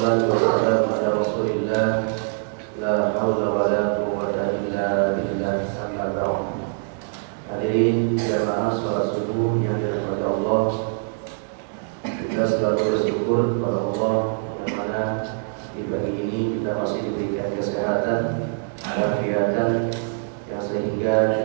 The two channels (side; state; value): left; silent; 57 dB below the other